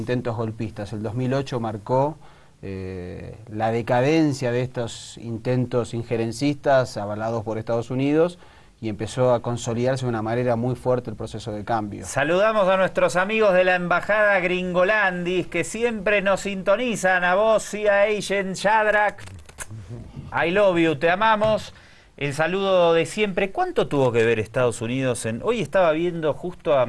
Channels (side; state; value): both; identical; correlation 1.00